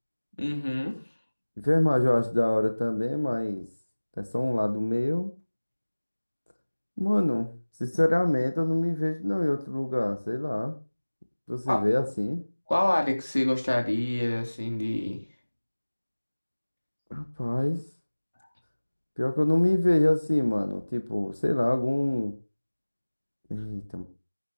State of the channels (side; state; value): both; inverted; correlation -1.00